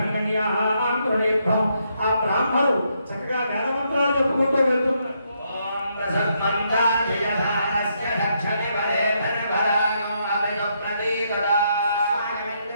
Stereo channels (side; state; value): both; inverted; correlation -0.76